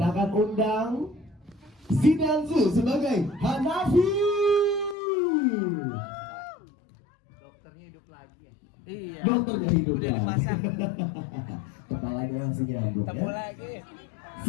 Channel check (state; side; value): drops out; right; at 5.0 s